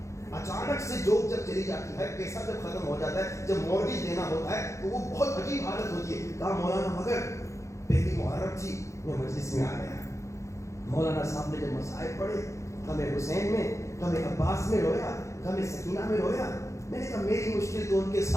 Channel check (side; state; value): right; late; 0.14 ms